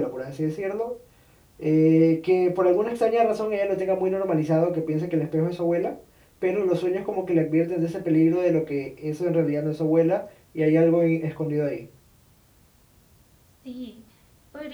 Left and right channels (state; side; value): identical; both; correlation 1.00